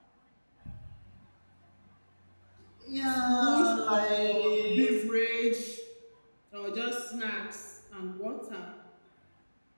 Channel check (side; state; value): both; inverted; correlation -1.00